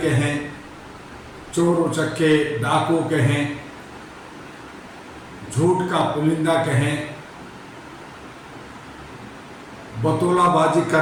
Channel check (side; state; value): both; identical; correlation 1.00